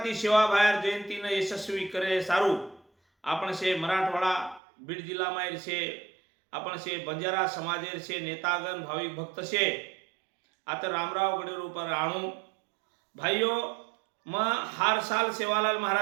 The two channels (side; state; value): left; drops out; at 4.6 s